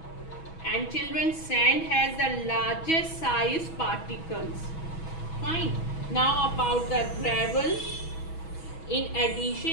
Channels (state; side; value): late; right; 6.2 ms